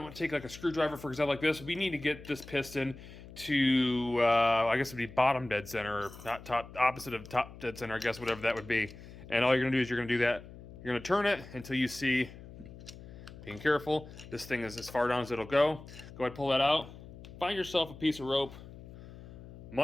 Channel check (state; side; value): noise; left; hum, 16 dB below the sound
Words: to take like a screwdriver, for example, like this. We need to get this piston to, I guess it would be bottom dead center, or not top, opposite of top dead center, I guess, whatever that would be. And all you're going to do is you're going to do that. You're going to turn it until you see, being careful, this thing is as far down as it'll go. Go ahead, pull that out. Find yourself a piece of rope,